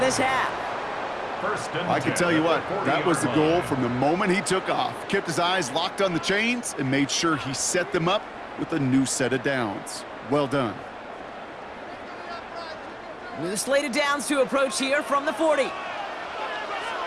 half. I can tell you what, that was the goal from the moment he took off. Kept his eyes locked on the chains and made sure he set them up with a new set of downs. Well done. With a slate of downs to approach here from the 40.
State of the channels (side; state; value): both; identical; correlation 1.00